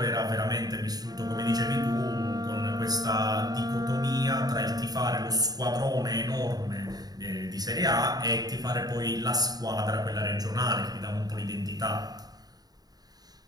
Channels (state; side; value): late; left; 0.19 ms